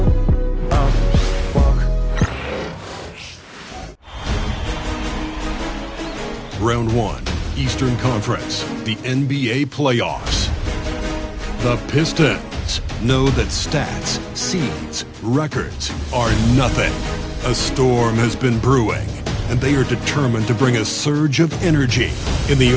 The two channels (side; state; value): both; identical; correlation 1.00